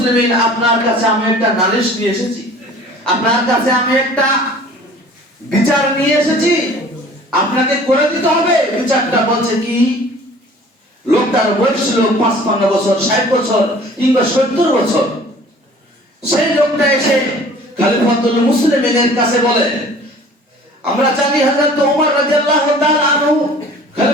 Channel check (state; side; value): normal; both; correlation 0.48